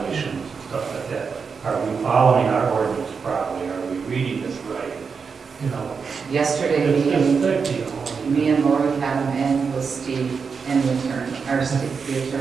and stuff like that. Are we following our ordinance properly? Are we reading this right? Yesterday, It's me just and, thick, me and Lori had him in with Steve and the attorney, or Steve, the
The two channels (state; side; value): quieter; left; 5.6 dB